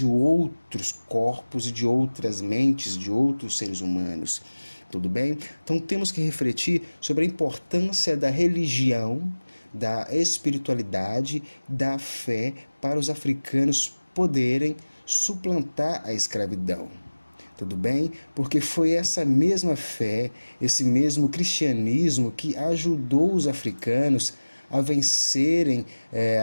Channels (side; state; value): both; inverted; correlation -1.00